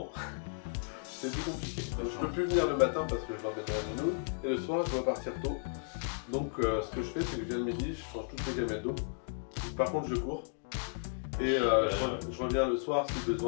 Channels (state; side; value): silent; right; digital silence